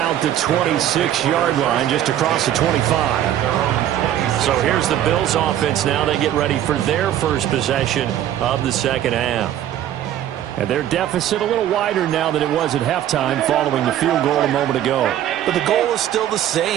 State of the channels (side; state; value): left; quieter; 11.6 dB